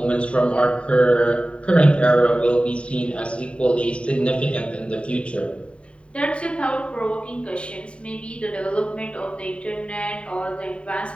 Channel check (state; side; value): late; right; 0.060 ms